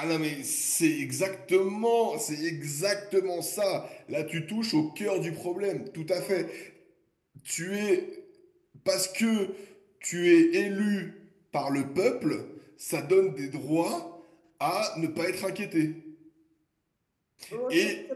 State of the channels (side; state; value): both; identical; correlation 1.00